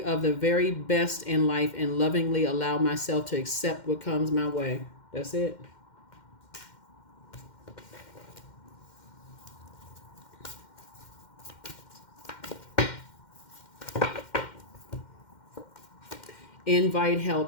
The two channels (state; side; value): late; right; 2.1 ms